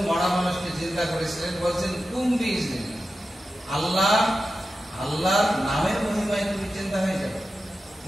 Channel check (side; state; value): both; normal; correlation 0.92